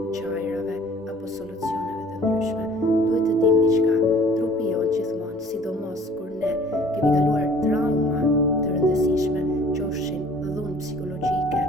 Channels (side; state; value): both; normal; correlation 0.51